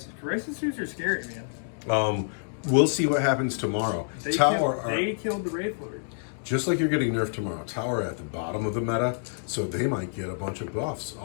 Crisis suits are scary, man. We'll see what happens tomorrow. They killed the Wraith Lord. Just like you're getting nerfed tomorrow, Tower at the bottom of the meta, so they might get a bunch of buffs.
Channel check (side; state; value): right; silent; digital silence